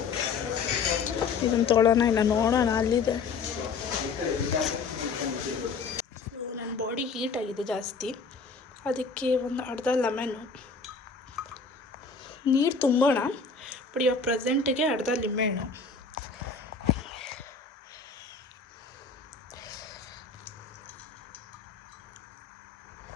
ಇದನ್ನು ತೊಗೊಳ್ಳೋಣ ಇಲ್ಲ ನೋಡೋಣ, ಅಲ್ಲಿದೆ. ನನ್ನ ಬಾಡಿ ಹೀಟ್ ಆಗಿದೆ ಜಾಸ್ತಿ, ಅದಕ್ಕೆ ಒಂದು ಅರ್ಧ ಲೆಮನ್ನು ನೀರು ತುಂಬೋಣ. ಬಟ್ ಇವಾಗ ಪ್ರೆಸೆಂಟಿಗೆ ಅರ್ಧ ಲಿಂಬೆಹಣ್ಣು,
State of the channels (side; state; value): right; quieter; 5.0 dB